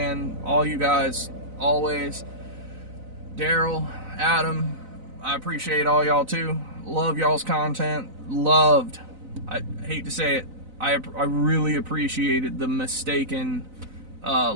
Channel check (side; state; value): left; late; 4.0 ms